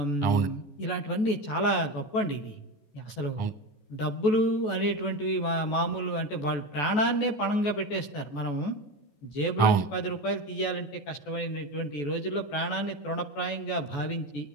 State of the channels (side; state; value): right; late; 14 ms